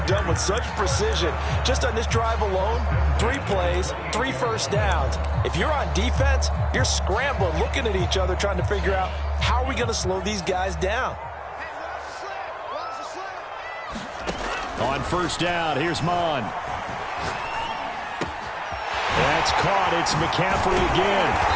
done with such precision. Just on this drive alone, 3 plays, 3 first downs. If you're on defense, you're scrambling, looking at each other, trying to figure out how are we going to slow these guys down. On first down, here's Mon. That's caught. It's McCaffrey again.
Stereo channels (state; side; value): identical; both; correlation 1.00